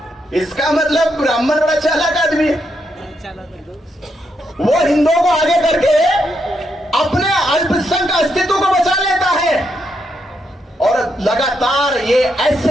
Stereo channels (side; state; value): both; normal; correlation 0.80